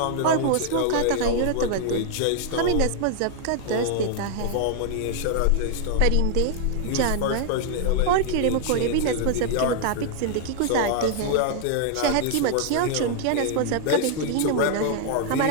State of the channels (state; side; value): different; both; correlation 0.00